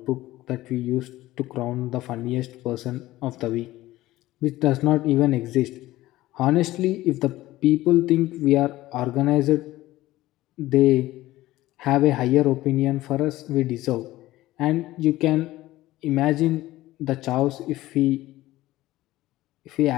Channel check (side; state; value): right; quieter; 16.6 dB